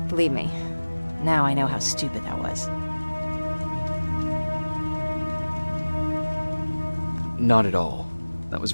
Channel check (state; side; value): inverted; both; correlation -1.00